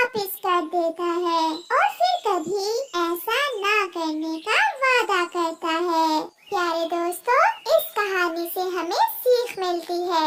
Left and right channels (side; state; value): both; identical; correlation 1.00